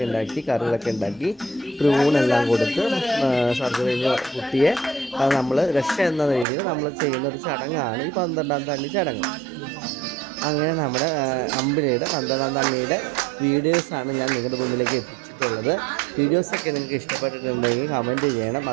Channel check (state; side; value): drops out; left; at 6.5 s